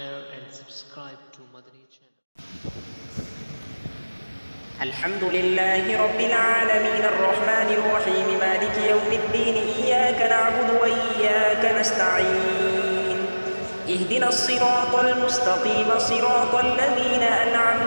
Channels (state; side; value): inverted; both; correlation -1.00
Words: and subscribe to Madani channel. الحمد لله رب العالمين الرحمن الرحيم مالك يوم الدين إياك نعبد وإياك نستعين اهدنا الصراط المستقيم صراط الذين